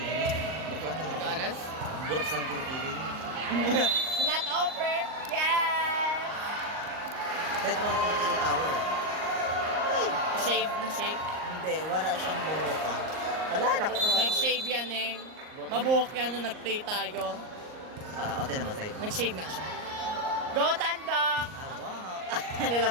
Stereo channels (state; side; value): late; left; 38 ms